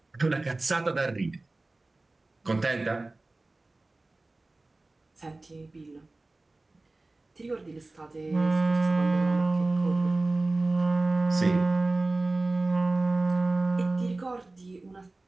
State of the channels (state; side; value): quieter; left; 3.0 dB